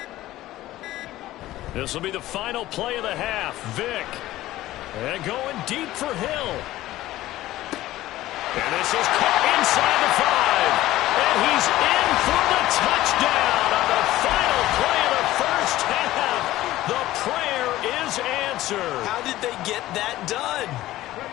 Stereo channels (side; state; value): right; quieter; 15.7 dB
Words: This will be the final play of the half. Vick. And going deep for Hill. And this is caught inside the 5. And he's in for the touchdown on the final play of the first half. The prayer is answered. How did they get that done?